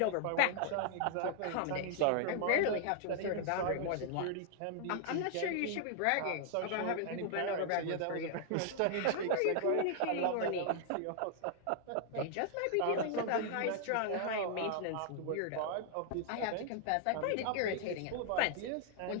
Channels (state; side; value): different; both; correlation 0.00